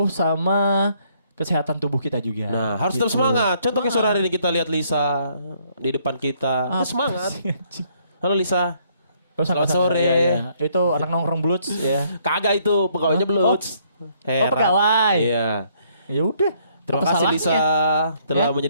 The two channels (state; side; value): inverted; both; correlation -0.68